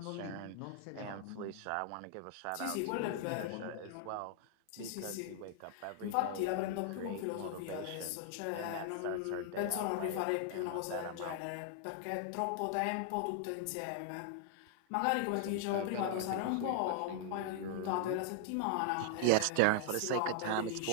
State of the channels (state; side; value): different; both; correlation 0.00